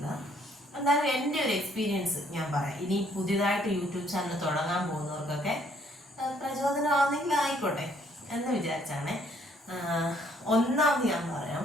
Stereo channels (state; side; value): normal; both; correlation 0.65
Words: എന്നാലും എൻ്റെ ഒരു എക്സ്പീരിയൻസ് ഞാൻ പറയാം. ഇനി പുതിയതായിട്ട് യൂട്യൂബ് ചാനൽ തുടങ്ങാൻ പോകുന്നവർക്കൊക്കെ പ്രചോദനമാണെങ്കിൽ ആയിക്കോട്ടെ എന്ന് വിചാരിച്ചാണ്. ഒന്നാമത് ഞാൻ പറയാം,